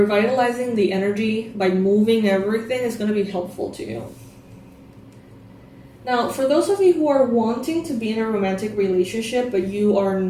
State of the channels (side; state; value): both; identical; correlation 1.00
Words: the energy by moving everything is going to be helpful to you. Now, for those of you who are wanting to be in a romantic relationship but you are